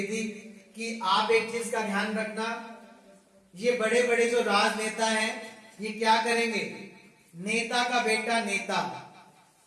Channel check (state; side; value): identical; both; correlation 1.00